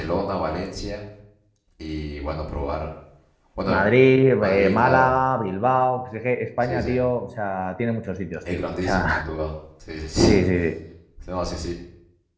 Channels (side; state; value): both; identical; correlation 1.00